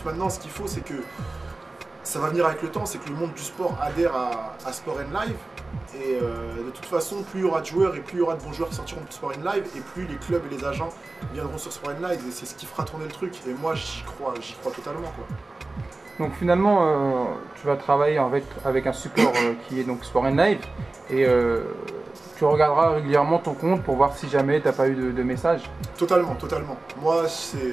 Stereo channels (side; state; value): left; quieter; 3.1 dB